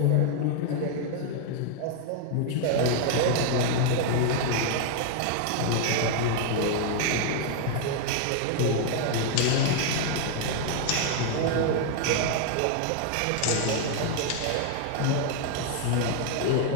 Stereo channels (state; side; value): different; both; correlation 0.00